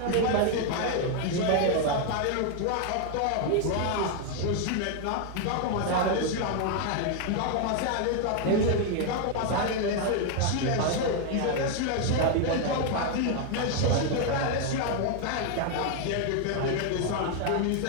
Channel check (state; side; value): different; both; correlation 0.00